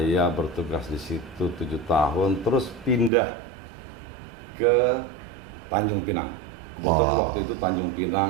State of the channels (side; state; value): left; drops out; at 3.1 s